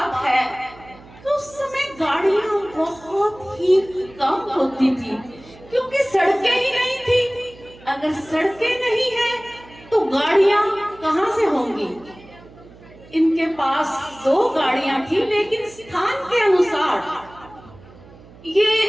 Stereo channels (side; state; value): right; noise; hum, 22 dB below the sound